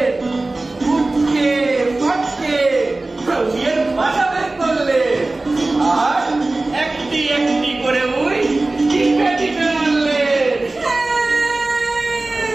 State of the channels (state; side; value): quieter; left; 3.0 dB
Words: উঠকে ফাটকে বিয়ের ভাষা বের করলে, আর একটি একটি করে ওই টিপে টিপে মারলেন।